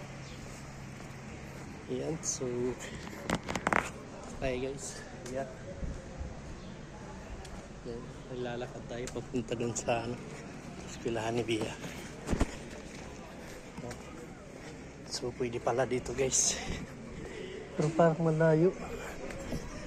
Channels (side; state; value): both; identical; correlation 1.00